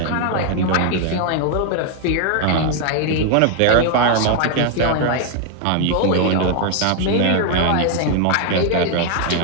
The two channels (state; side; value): different; both; correlation 0.01